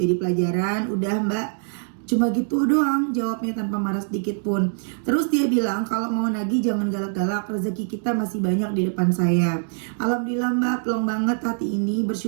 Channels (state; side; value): silent; left; 63 dB below the other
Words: pelajaran. Udah Mbak, cuma gitu doang jawabnya tanpa marah sedikit pun. Terus dia bilang, kalau mau nagih jangan galak-galak, rezeki kita masih banyak di depan saya. Alhamdulillah Mbak, plong banget hati ini.